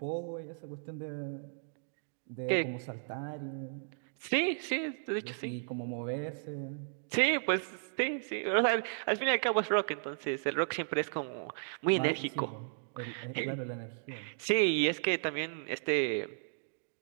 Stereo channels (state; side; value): silent; left; digital silence